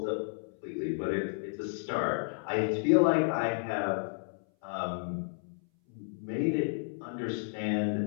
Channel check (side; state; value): right; silent; 56 dB below the other